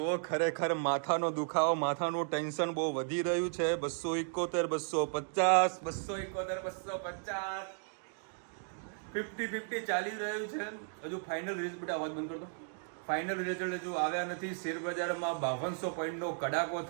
ખરેખર માથાનો દુખાવો, માથાનું ટેન્શન બહુ વધી રહ્યું છે. 271, 250, 50-50 ચાલી રહ્યું છે. હજુ ફાઇનલ રિઝલ્ટ, બેટા અવાજ બંધ કરતો. ફાઇનલ રિઝલ્ટ હજુ આવ્યા નથી. શેરબજારમાં 5200 પોઈન્ટનો કડાકો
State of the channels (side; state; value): left; silent; 55 dB below the other